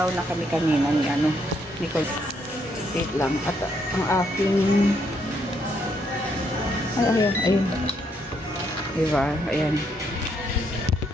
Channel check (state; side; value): normal; both; correlation 0.74